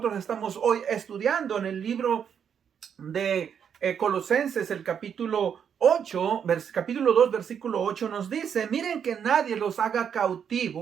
estamos hoy estudiando en el libro de Colosenses, el capítulo 8, capítulo 2, versículo 8 nos dice: miren que nadie los haga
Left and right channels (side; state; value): left; quieter; 7.8 dB